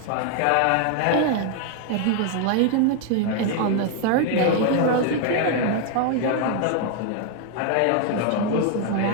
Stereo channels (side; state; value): both; different; correlation 0.01